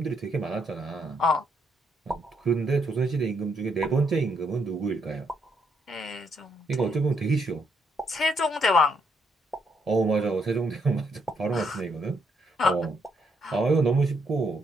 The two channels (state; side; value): normal; both; correlation 0.74